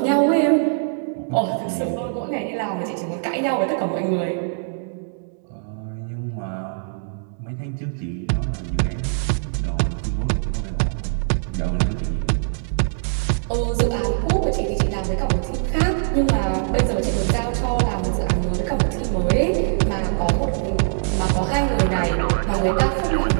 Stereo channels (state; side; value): silent; left; 61 dB below the other